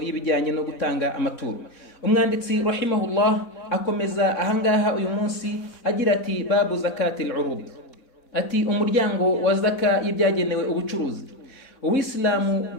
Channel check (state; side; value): late; right; 4.0 ms